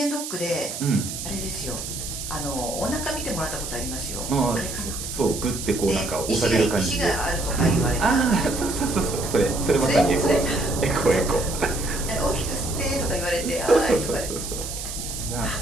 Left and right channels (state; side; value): noise; right; hiss, 7 dB below the sound